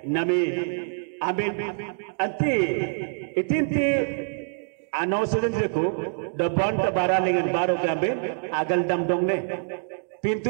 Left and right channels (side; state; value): left; silent; digital silence